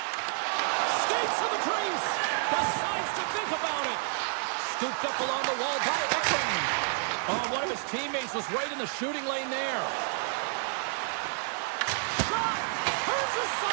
Skates to the crease. Decides to think about it. Scooped up along the wall by Ekman. Oh, one of his teammates was right in the shooting lane there.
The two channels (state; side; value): silent; left; 56 dB below the other